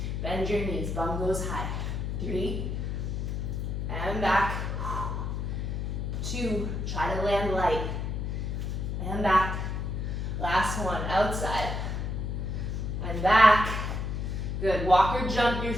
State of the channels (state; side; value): noise; left; hum, 2 dB below the sound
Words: Bend your knees. Bum goes high. 3. And back. 2. Try to land light. And back. Last one. Outside. And back. Good. Walk or jump your